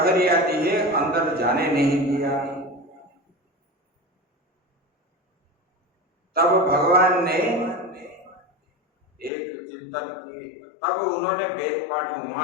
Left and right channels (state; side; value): drops out; right; at 9.3 s